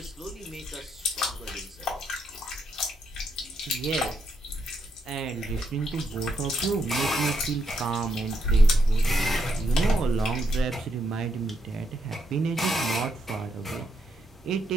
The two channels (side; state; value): both; normal; correlation 0.78